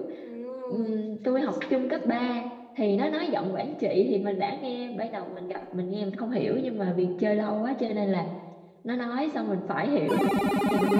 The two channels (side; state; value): both; identical; correlation 1.00